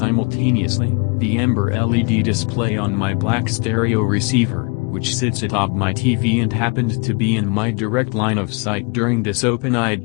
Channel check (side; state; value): right; quieter; 32.4 dB